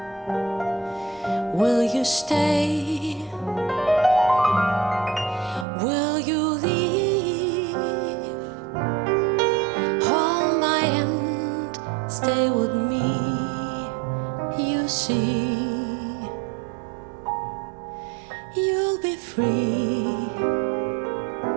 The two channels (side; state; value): left; drops out; at 5.7 s